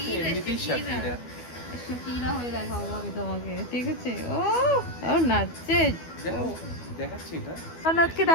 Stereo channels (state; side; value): late; right; 12 ms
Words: এমনিতেই শাকিরা। শাকিরা হয়ে দেখাবো আমি তোমাকে, ঠিক আছে। ও নাচছে, দেখো দেখাচ্ছি এটা। নাচকে